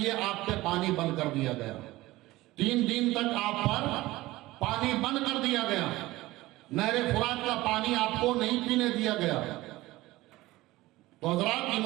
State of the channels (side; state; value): left; quieter; 18.4 dB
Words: آپ پہ پانی بند کر دیا گیا. 3 دن تک آپ پر پانی بند کر دیا گیا. نہر فرات کا پانی آپ کو نہیں پینے دیا گیا. تو حضرات